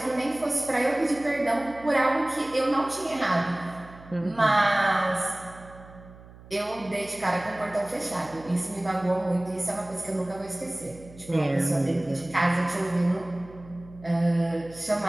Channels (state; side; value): noise; right; hum, 20 dB below the sound